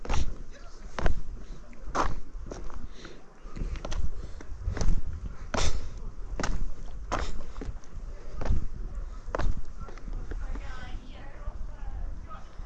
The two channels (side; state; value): both; identical; correlation 1.00